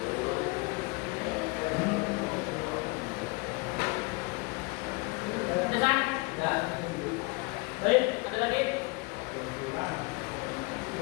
Pesan? Ya. Baik, ada lagi?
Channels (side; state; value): right; quieter; 27.2 dB